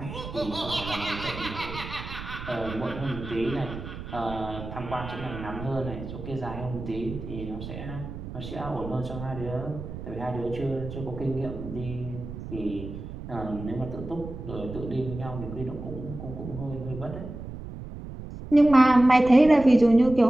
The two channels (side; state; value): right; noise; rumble, 10 dB below the sound